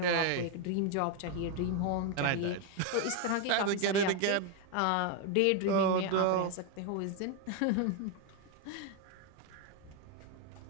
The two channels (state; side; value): different; both; correlation 0.01